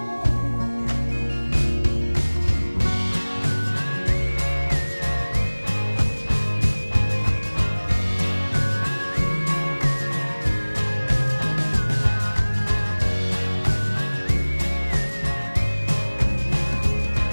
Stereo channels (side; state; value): both; inverted; correlation -1.00